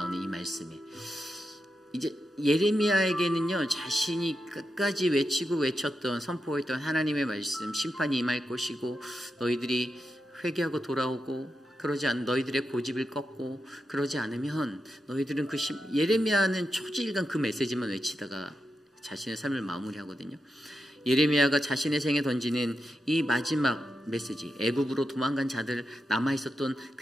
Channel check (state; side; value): normal; both; correlation 0.87